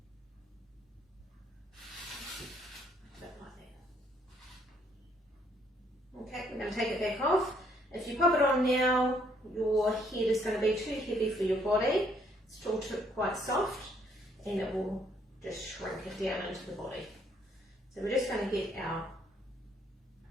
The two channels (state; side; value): normal; both; correlation 0.67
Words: A bit like that. Okay, we're going to take it back off. If you pop it on now, your head is going to be too heavy for your body. It's still quite soft, and it will just shrink it down into the body. So we're just going to get our